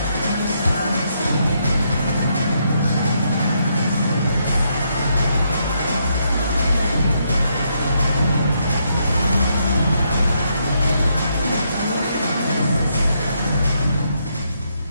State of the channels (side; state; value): both; inverted; correlation -0.77